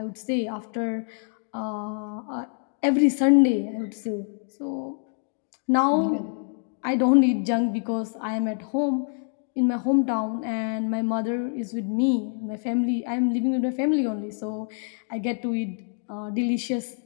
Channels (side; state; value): right; silent; 56 dB below the other